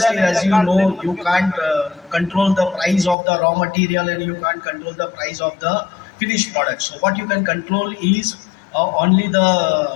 as you know, you can't control the price of the raw material and you can't control the price of the finished product. So what you can control is only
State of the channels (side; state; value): right; drops out; at 3.2 s